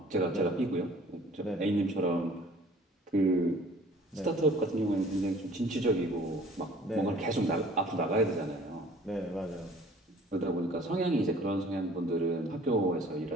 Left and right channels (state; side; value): normal; both; correlation 0.52